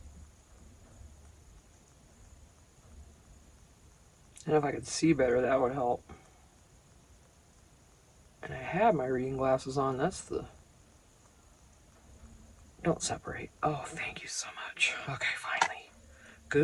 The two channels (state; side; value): identical; both; correlation 1.00